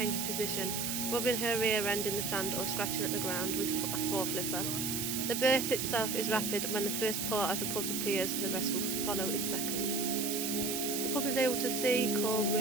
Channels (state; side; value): noise; right; hiss, 1 dB below the sound